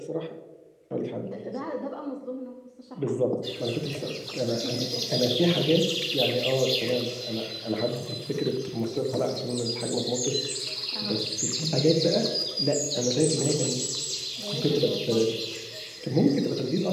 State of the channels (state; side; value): identical; both; correlation 1.00